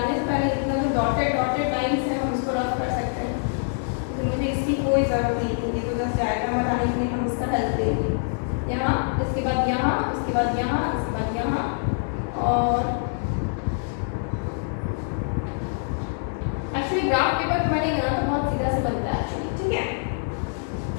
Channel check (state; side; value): silent; right; digital silence